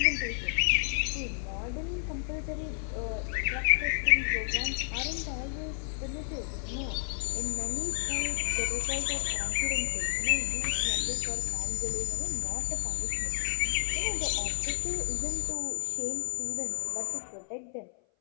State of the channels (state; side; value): silent; right; 57 dB below the other